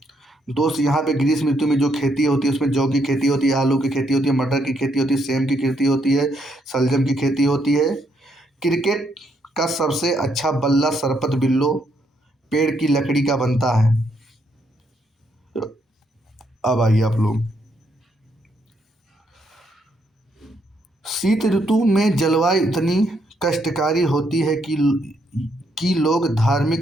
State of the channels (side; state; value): both; normal; correlation 0.75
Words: दोस्त यहाँ पे ग्रीष्म ऋतु में जो खेती होती है उसमें जौ की खेती होती है, आलू की खेती होती है, मटर की खेती होती है, सेम की खेती होती है, सलजम की खेती होती है। क्रिकेट का सबसे अच्छा बल्ला सरपत बिल्लो पेड़ की लकड़ी का बनता है। अब आइए आप लोग। शीत ऋतु में जलवायु इतनी कष्टकारी होती है कि लोग